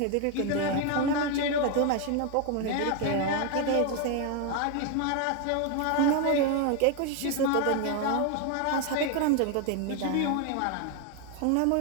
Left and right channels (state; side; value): different; both; correlation 0.01